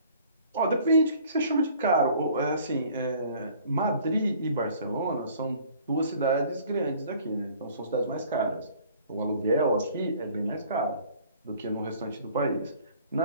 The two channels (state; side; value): inverted; both; correlation -0.53